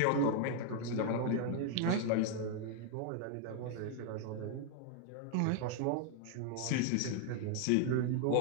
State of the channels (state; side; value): different; both; correlation 0.00